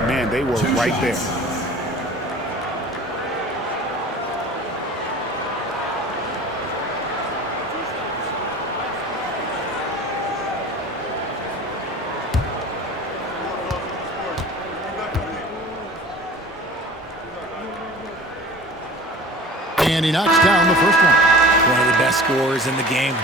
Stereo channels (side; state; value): both; normal; correlation 0.41